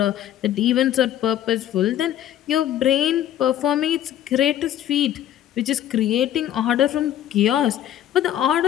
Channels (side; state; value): right; quieter; 11.5 dB